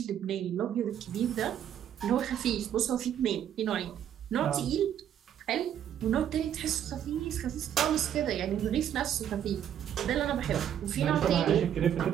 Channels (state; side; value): quieter; left; 9.9 dB